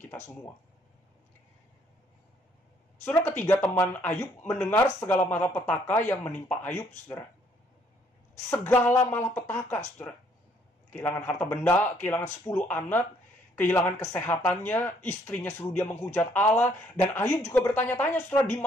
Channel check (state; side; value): normal; both; correlation 0.66